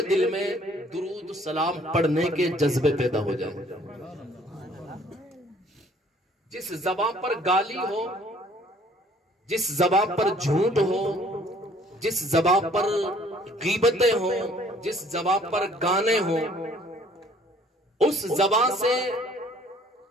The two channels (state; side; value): normal; both; correlation 0.58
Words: دل میں درود و سلام پڑھنے کے جذبے پیدا ہو جائے۔ جس زبان پر گالی ہو، جس زبان پر جھوٹ ہو، جس زبان پر غیبتیں ہوں، جس زبان پر گانے ہوں، اس زبان سے